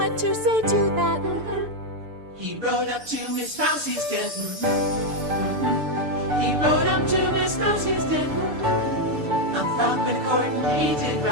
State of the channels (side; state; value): left; late; 6.8 ms